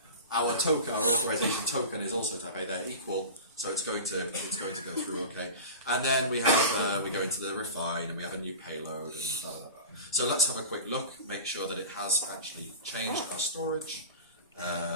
Our token, our authorization token is also type A, they're equal. So it's going to go through okay. And then we have, we go into the refine and we have a new payload and blah, blah, blah. So let's have a quick look, make sure that it has actually changed our storage.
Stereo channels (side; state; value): both; inverted; correlation -0.32